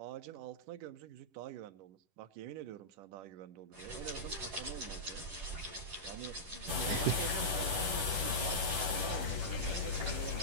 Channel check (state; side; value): late; left; 10 ms